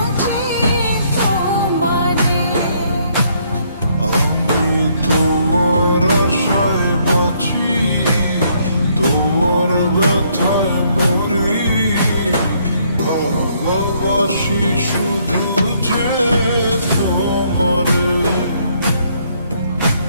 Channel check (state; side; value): inverted; both; correlation -0.68